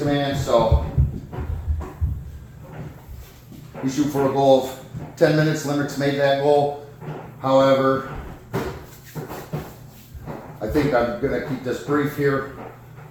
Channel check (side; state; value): both; identical; correlation 1.00